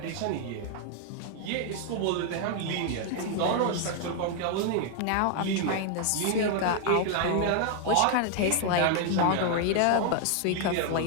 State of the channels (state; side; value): different; both; correlation 0.00